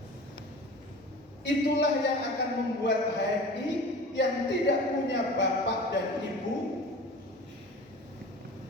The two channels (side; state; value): both; normal; correlation 0.38